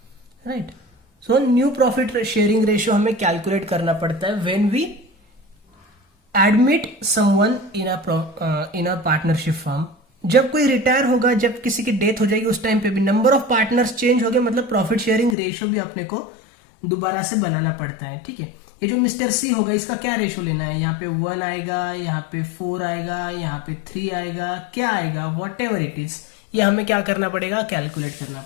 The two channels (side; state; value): right; drops out; at 15.4 s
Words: right. So new profit sharing ratio हमें कैलकुलेट करना पड़ता है when we admit someone in a partnership firm. जब कोई रिटायर होगा, जब किसी की डेथ हो जाएगी, उस टाइम पे भी नंबर ऑफ पार्टनर्स चेंज हो गए, मतलब प्रॉफिट शेयरिंग रेशियो भी अपने को दोबारा से बनाना पड़ता है. ठीक है, ये जो मिस्टर सी होगा इसका क्या रेशियो लेना है, यहाँ पे 1 आएगा, यहाँ पे 4 आएगा, यहाँ पे 3 आएगा, क्या आएगा, वॉट एवर इट इज, ये हमें क्या करना पड़ेगा, कैलकुलेट करना